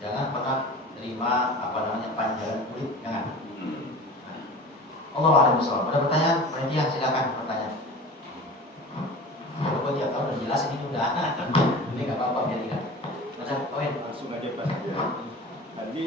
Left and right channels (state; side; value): normal; both; correlation 0.37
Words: Jangan pernah terima panjangan kulit, jangan. Allah a'lam bishawab. Ada pertanyaan? Panitia silakan bertanya. Kalau tiap tahun udah jelas ini udah. Ini nggak apa-apa biar ingat. Macam poin Langsung aja Pak. Tadi